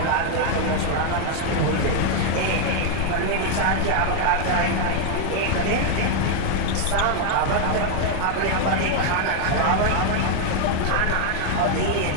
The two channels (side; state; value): both; different; correlation 0.00